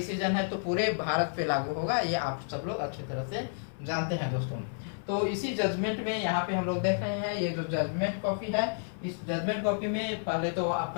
है तो पूरे भारत पे लागू होगा, ये आप सब लोग अच्छी तरह से जानते हैं। दोस्तों, तो इसी जजमेंट में यहाँ पे हम लोग देख रहे हैं, ये जो जजमेंट कॉपी है, इस जजमेंट कॉपी में पहले तो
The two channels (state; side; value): silent; right; digital silence